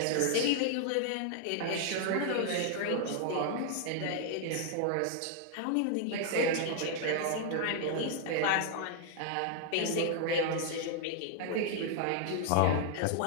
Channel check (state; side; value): different; both; correlation 0.00